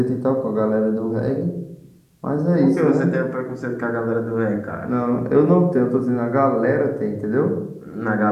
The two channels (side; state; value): both; identical; correlation 1.00